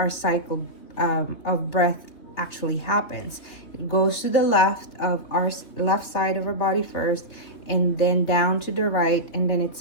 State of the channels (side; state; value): right; late; 3.2 ms